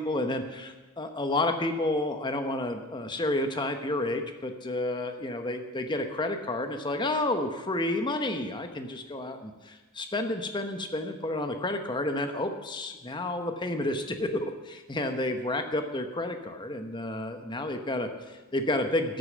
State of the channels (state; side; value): normal; both; correlation 0.40